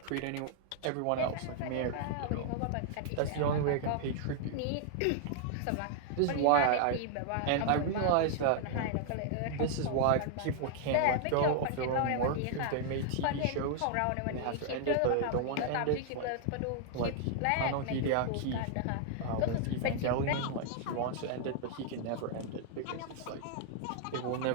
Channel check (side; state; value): both; different; correlation -0.01